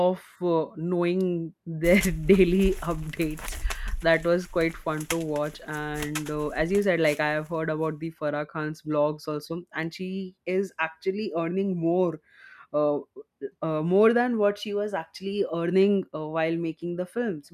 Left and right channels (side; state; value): both; identical; correlation 1.00